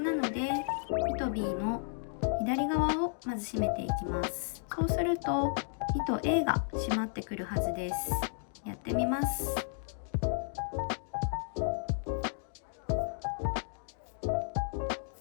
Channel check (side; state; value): right; silent; digital silence